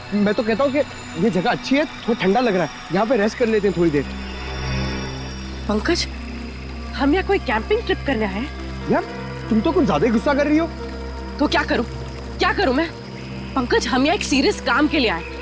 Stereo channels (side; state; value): both; identical; correlation 1.00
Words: मैं तो कहता हूँ कि ये जगह अच्छी है, थोड़ा ठंडा लग रहा है, यहाँ पे रेस्ट कर लेते हैं थोड़ी देर। पंकज, हम यहाँ कोई कैंपिंग ट्रिप करना है? यार तुम तो कुछ ज्यादा ही गुस्सा कर रही हो। तो क्या करूं? क्या करूं मैं? पंकज, हम यहाँ एक सीरियस काम के लिए आए,